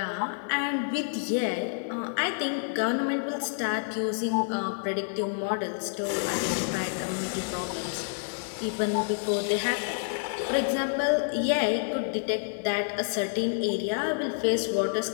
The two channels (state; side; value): silent; right; digital silence